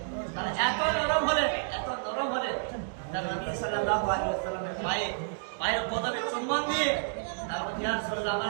তারা এত নরম হলেন তারা নবী সাল্লাল্লাহু আলাইহি ওয়াসাল্লামের পায়ের পদবে চুম্বন দিয়ে তারপর ইয়া রাসূলুল্লাহ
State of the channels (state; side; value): silent; left; digital silence